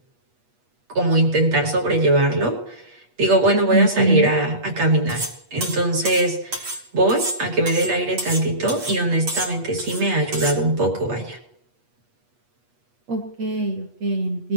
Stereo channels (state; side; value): late; left; 8.3 ms